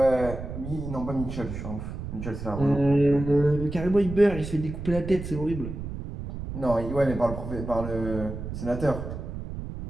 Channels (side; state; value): right; noise; rumble, 7 dB below the sound